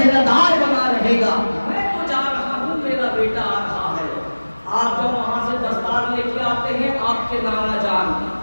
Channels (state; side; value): inverted; both; correlation -1.00